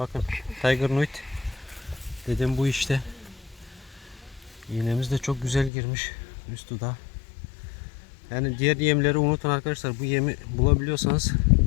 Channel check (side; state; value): right; drops out; at 5.7 s